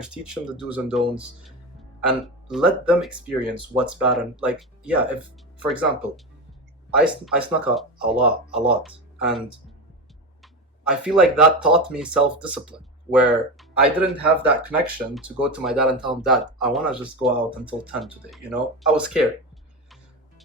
teach them the do's and don'ts, and let them experience what's bad. And like, yeah, if for example, I snuck a lot, and I feel like that taught me self-discipline, where I didn't have that connection to go to my dad and tell him, Dad, I want to just go out until 10 today, I was scared.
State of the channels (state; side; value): normal; both; correlation 0.20